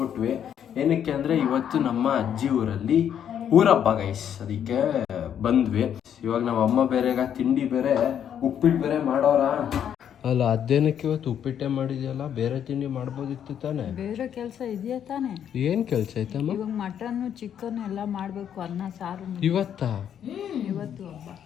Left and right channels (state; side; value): quieter; right; 9.2 dB